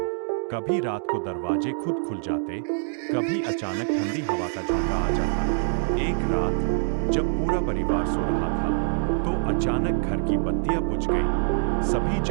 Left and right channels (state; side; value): silent; left; digital silence